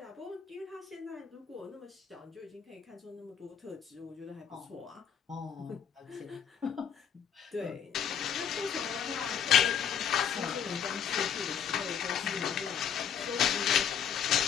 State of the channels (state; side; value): quieter; right; 8.1 dB